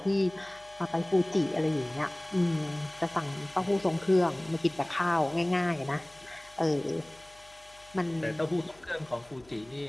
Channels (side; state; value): left; noise; hum, 27 dB below the sound